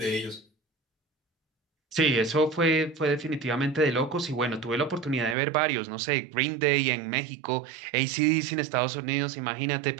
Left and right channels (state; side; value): drops out; left; at 5.4 s